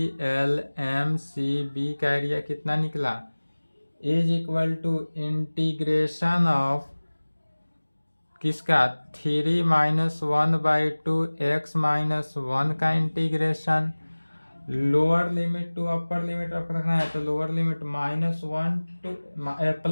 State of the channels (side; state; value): both; inverted; correlation -1.00